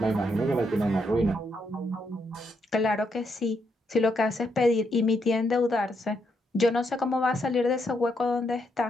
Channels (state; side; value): normal; both; correlation 0.78